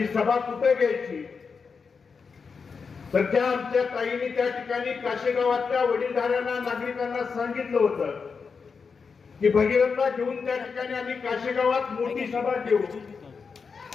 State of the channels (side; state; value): right; quieter; 5.4 dB